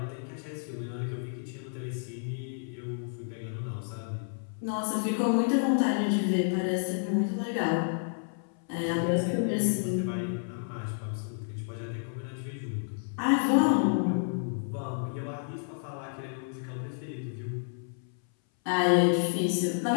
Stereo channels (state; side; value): silent; right; 57 dB below the other